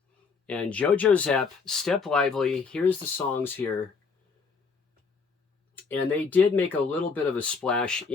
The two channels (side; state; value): right; quieter; 5.0 dB